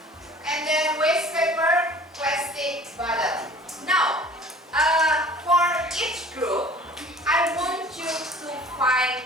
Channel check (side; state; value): both; normal; correlation 0.47